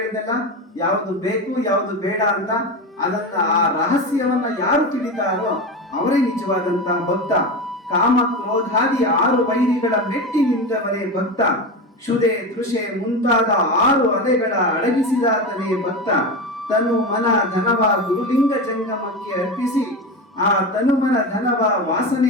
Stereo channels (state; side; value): normal; both; correlation 0.22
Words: ಯಾವುದು ಬೇಕು ಯಾವುದು ಬೇಡ ಅಂತ, ಅದನ್ನ ಆ ರಹಸ್ಯವನ್ನ ಯಾರು ತಿಳಿತಾರೋ ಅವರೇ ನಿಜವಾದಂತ ಭಕ್ತ. ಕಾಮ ಕ್ರೋಧಾದಿ 6 ವೈರಿಗಳ ಮೆಟ್ಟಿ ನಿಂತವನೇ ಭಕ್ತ. ಕ್ಷುದೆ ತೃಷೆ ಮುಂತಾದ 6 ಅಲೆಗಳ ಅಡಗಿಸಿದಾತನೇ ಭಕ್ತ. ತನು ಮನ ಧನವ ಗುರುಲಿಂಗ ಜಂಗಮಕ್ಕೆ ಅರ್ಪಿಸಿ ಆ ತನುಮನ ಧನವ